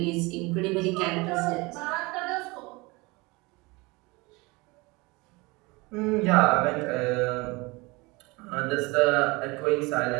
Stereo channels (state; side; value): quieter; left; 24.8 dB